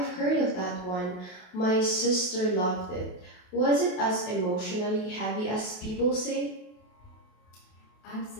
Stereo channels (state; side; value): late; right; 28 ms